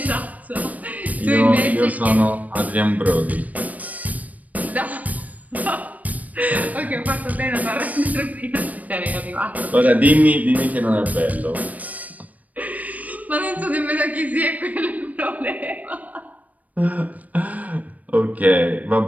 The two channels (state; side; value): late; left; 0.073 ms